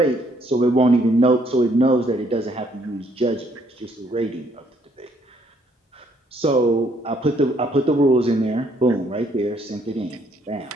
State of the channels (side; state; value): both; normal; correlation 0.67